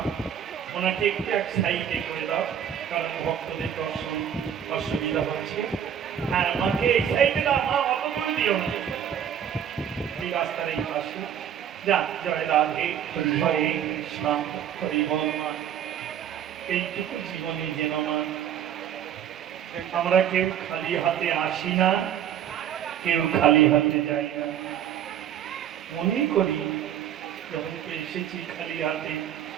ওনাকে একটু এক সাইডে করে দাও, কারণ ভক্তদের দর্শন অসুবিধা হচ্ছে। হ্যাঁ, মাকে এই সাইডে দাও মা, অত করে দিও না, এই রাস্তার এই পাশে। যা, জয় রাধে, হরে কৃষ্ণ হরি বল মা। এইটুকু জীবনে যেন মা আমরা কেউ খালি হাতে আসি না, কেউ খালি হাতে যাই না। মনে করি যখন এসেছি খালি হাতে,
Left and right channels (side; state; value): left; quieter; 9.5 dB